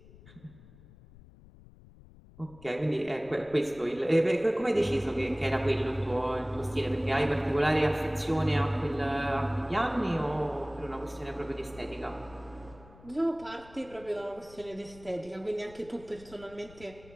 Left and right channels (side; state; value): left; noise; rumble, 22 dB below the sound